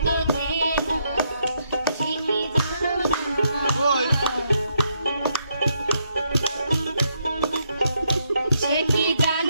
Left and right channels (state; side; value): inverted; both; correlation -0.76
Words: চেনা, ঠিকই জানো না। সে কি